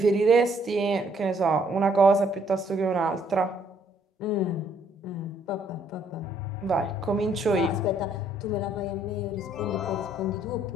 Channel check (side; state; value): both; normal; correlation 0.66